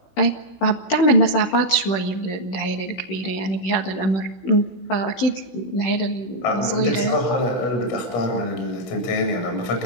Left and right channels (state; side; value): late; right; 16 ms